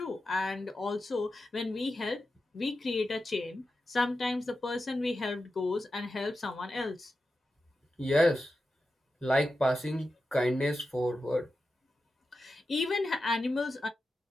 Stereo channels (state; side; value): normal; both; correlation 0.91